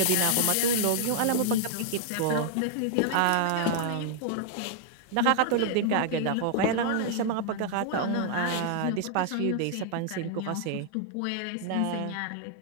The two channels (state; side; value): different; both; correlation 0.00